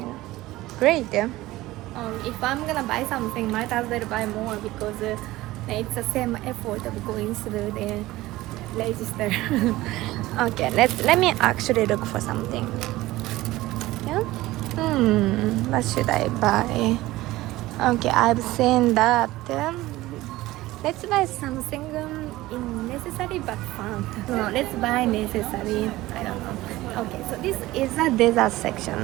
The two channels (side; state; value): left; quieter; 17.7 dB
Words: Great. If I'm gonna buy something, might as well buy more because it's the same effort of going through the register. Okay, let me actually look for something. Yeah. What should I buy? Okay, I've seen that. Let's buy something unnecessary but fun. No, let's buy necessary. I don't know. Okay, so this is a dessert